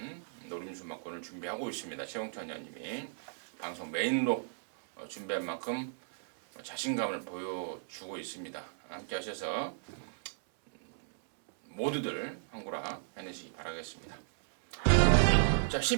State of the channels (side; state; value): left; silent; 55 dB below the other